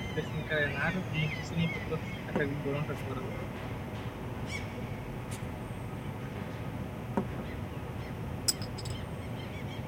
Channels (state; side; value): identical; both; correlation 1.00